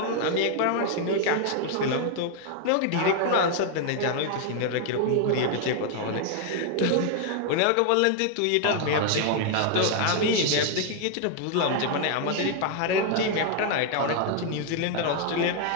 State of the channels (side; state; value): both; different; correlation 0.00